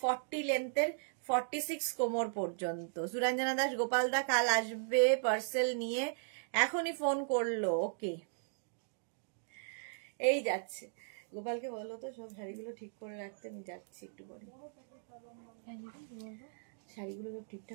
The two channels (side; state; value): left; silent; digital silence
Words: লেন্থের 46 কোমর পর্যন্ত। সুরঞ্জনা দাস গোপাল দা কাল আসবে পার্সেল নিয়ে, এখনই ফোন করলো। ওকে, এই যাচ্ছে। গোপালকে বলো তো সব শাড়িগুলো ঠিক করে রাখতে, আমি যাচ্ছি একটু পরে। শাড়িগুলো সব